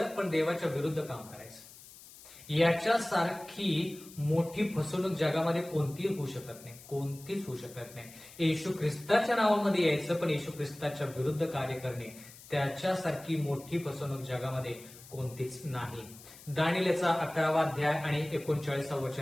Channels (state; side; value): noise; left; hiss, 19 dB below the sound